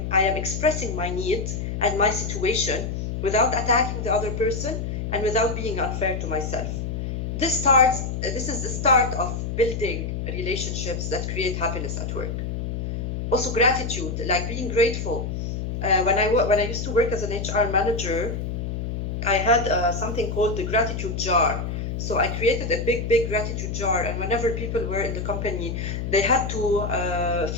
am expressing my needs and my situation without attacking the other person and without being unfair to myself. This is the start of building relationships that create happiness at work. Also gratitude, like being grateful. When I used to work as an HR manager, I had something called the gratitude jar. So I created a big gratitude jar, and whenever people were in the company, they had to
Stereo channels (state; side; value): noise; left; hum, 4 dB below the sound